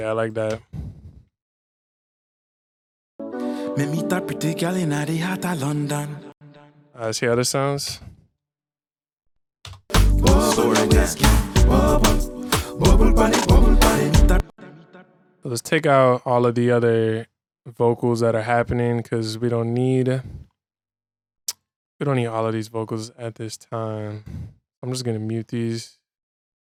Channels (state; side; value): identical; both; correlation 1.00